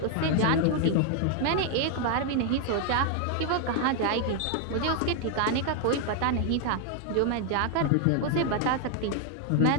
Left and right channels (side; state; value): both; different; correlation 0.00